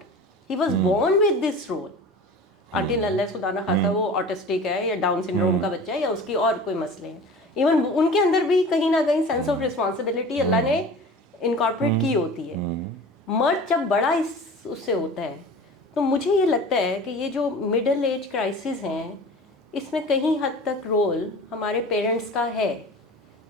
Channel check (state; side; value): normal; both; correlation 0.39